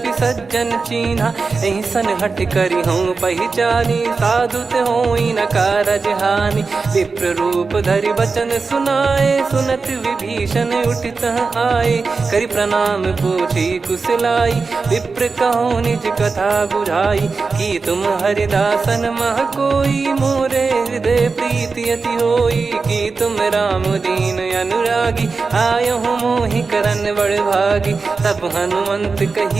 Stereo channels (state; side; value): quieter; left; 4.4 dB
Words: सज्जन चीन्हा। एहि सन हठ करि हूँ पहिचानी साधु ते होई न कारज हानि। विप्र रूप धरि वचन सुनाए सुनत विभीषण उठित आए। करि प्रणाम पूछी कुशलाई विप्र कहो निज कथा बुझाई। कि तुम हरिदासन मह कोई मोरे हृदय प्रीति अति होई। कि तुम राम दीन अनुरागी आयो हूँ मोहि करन बड़ भागी। तब हनुमंत